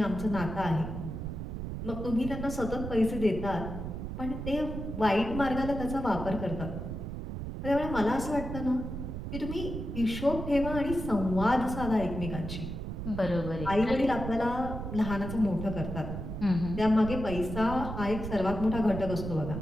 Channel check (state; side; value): noise; right; rumble, 6 dB below the sound